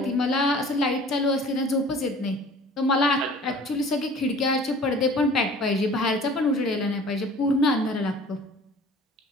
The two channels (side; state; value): both; normal; correlation 0.47